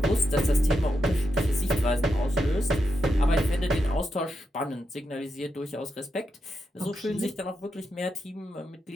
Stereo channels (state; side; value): normal; both; correlation 0.85